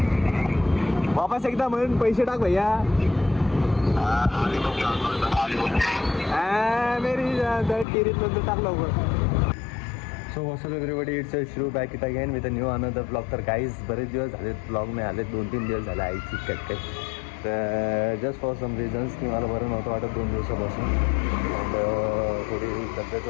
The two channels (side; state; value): right; drops out; at 7.9 s